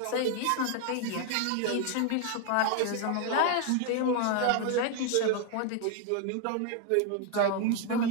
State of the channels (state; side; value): different; both; correlation 0.00